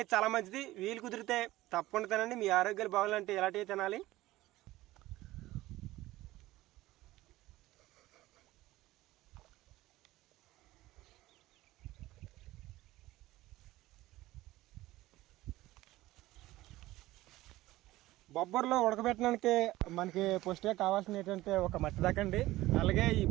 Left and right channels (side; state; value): left; quieter; 17.1 dB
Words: అయితే చాలా మంచిది. వీలు కుదిరితే తప్పకుండా తినండి. మీ ఆరోగ్యాలు బాగాలంటే ఎలాంటివి తినాలి. బొబ్బర్లో ఉడకబెట్టడానికి మనకి పుష్టిగా కావాల్సిన ఏంటంటే ఒక మట్టి దాకండి. అలాగే ఈ